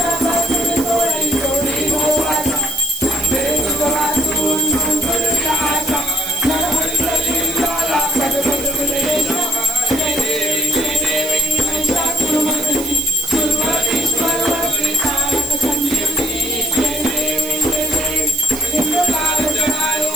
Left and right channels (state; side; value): noise; right; hiss, 10 dB below the sound